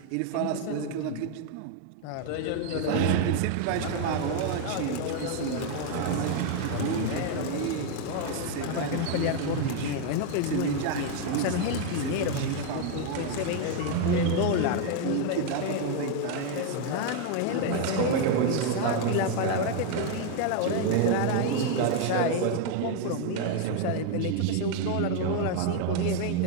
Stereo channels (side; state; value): both; different; correlation 0.01